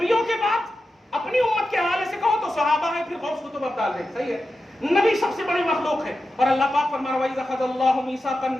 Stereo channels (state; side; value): normal; both; correlation 0.91